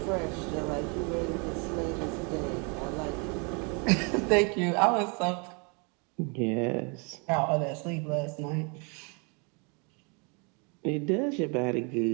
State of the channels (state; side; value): quieter; left; 34.0 dB